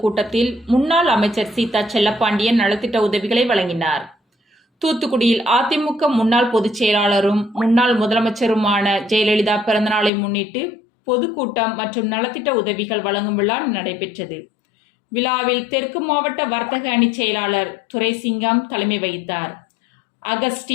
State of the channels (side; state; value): right; drops out; at 10.1 s